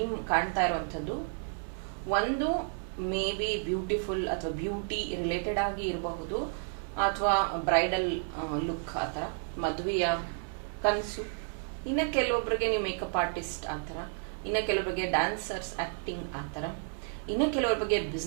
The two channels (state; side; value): silent; left; 57 dB below the other